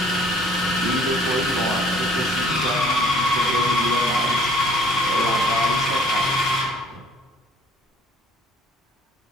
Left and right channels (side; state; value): both; normal; correlation 0.56